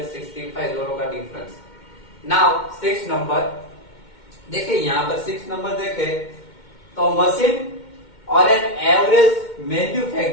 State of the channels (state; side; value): late; right; 2.2 ms